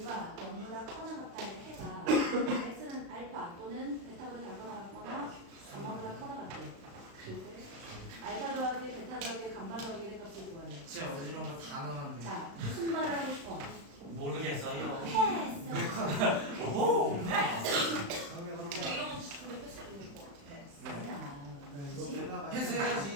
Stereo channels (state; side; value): late; left; 35 ms